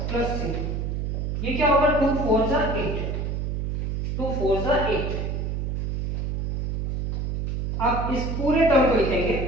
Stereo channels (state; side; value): noise; right; hum, 2 dB below the sound